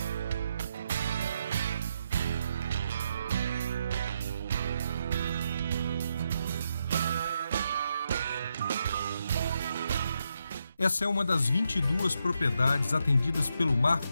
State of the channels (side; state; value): both; inverted; correlation -0.81